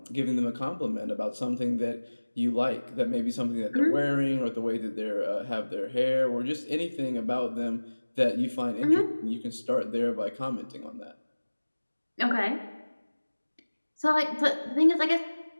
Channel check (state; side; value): inverted; both; correlation -1.00